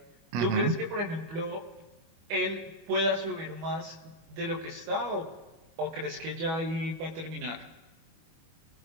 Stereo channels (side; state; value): left; late; 25 ms